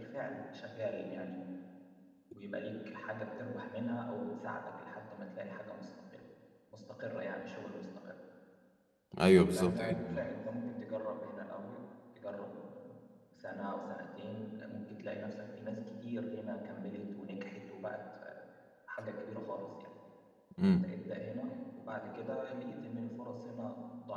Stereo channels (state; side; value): identical; both; correlation 1.00